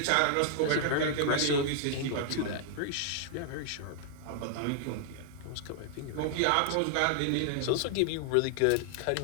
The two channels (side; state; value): both; different; correlation 0.00